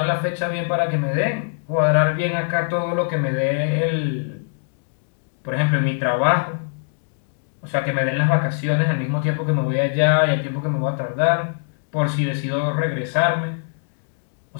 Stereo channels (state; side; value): silent; right; digital silence